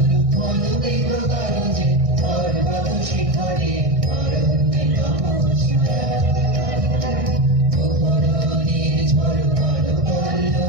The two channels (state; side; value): late; left; 1.6 ms